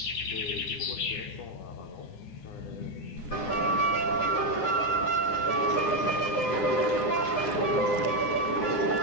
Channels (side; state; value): right; late; 9.9 ms